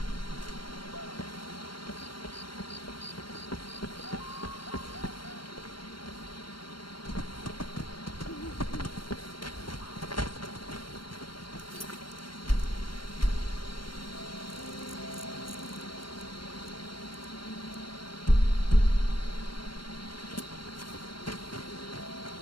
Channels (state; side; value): late; right; 0.72 ms